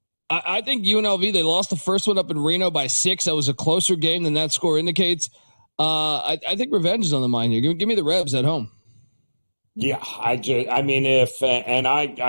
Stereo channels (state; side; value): inverted; both; correlation -1.00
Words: think UNLV, they lost the first one up in Reno by 6. That was a closer game than that score indicates. I think revenge is on the mind here. Give me the Rebs at home. Yeah, I